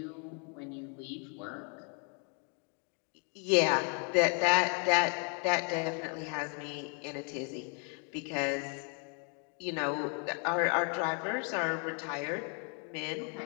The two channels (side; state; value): right; quieter; 38.9 dB